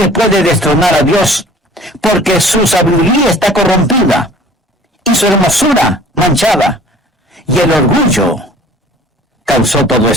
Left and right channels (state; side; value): normal; both; correlation 0.49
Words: puede destronar a Dios, porque su sabiduría está corrompida y su hermosura manchada, y el orgullo causó todo